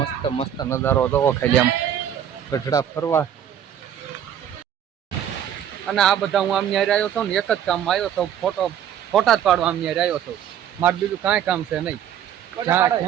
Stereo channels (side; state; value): left; quieter; 9.8 dB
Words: મસ્ત નજારો જોવો ખાલી આમ ગઢડા ફરવા. અને આ બધા હું આમ ન્યારે આવ્યો હતો ને એક જ કામ આવ્યો હતો, ફોટા જ પાડવા આમ ન્યારે આવ્યો હતો. મારે બીજું કાંઈ કામ છે નહીં.